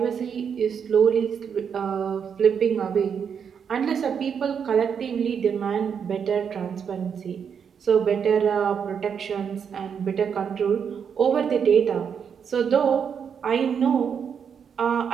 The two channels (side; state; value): left; quieter; 7.2 dB